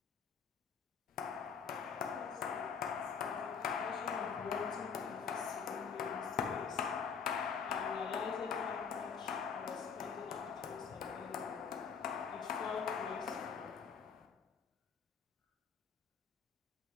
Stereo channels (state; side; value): quieter; right; 6.5 dB